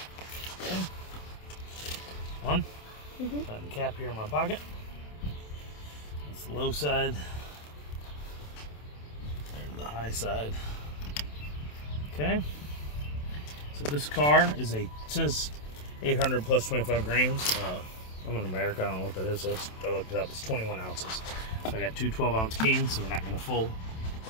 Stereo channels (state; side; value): late; right; 27 ms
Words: Okay. One. Put the cap here in my pocket. That's the low side. There's the high side. Okay. So this car is it says 800 plus 25 grams. I'm in America. I don't know what that is. So I looked it up. It's 21 ounces. So I got two 12-ounce cans. So we're not going to full.